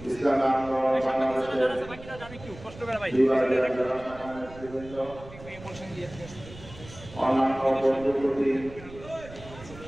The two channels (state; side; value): noise; right; rumble, 17 dB below the sound